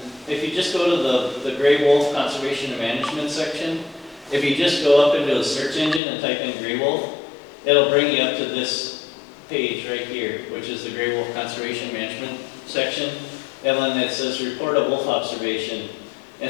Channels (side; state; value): right; drops out; at 6.0 s